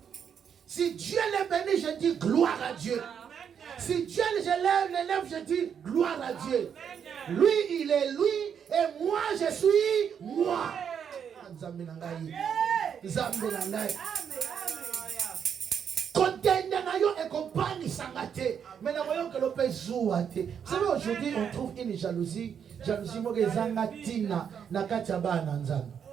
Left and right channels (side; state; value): left; quieter; 7.8 dB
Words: je dis gloire à Dieu. Lui, il est lui et moi, je suis moi. Nzambe na ngai. Nzambe na ngai. Contender na yo et compagnie sangate. Mais na voyons que l'opé zouate. Vous savez, aujourd'hui, on trouve une jalousie. Jalousie moke zanga tina na kati ya bana nzambe.